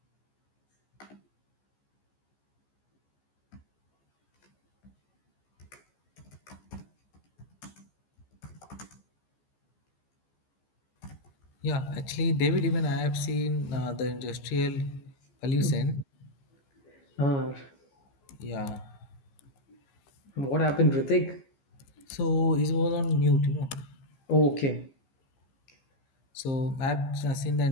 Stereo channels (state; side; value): late; right; 15 ms